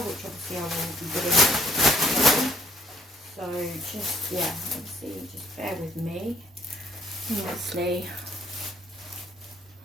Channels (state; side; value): normal; both; correlation 0.64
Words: which obviously I will be doing. So just yeah, obviously just bear with me. And obviously